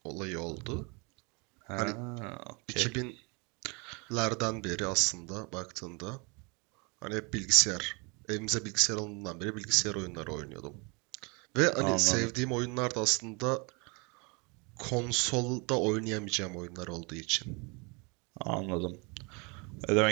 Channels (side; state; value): left; quieter; 30.5 dB